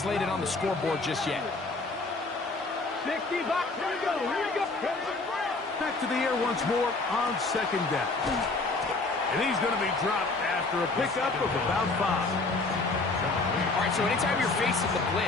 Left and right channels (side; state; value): right; quieter; 3.5 dB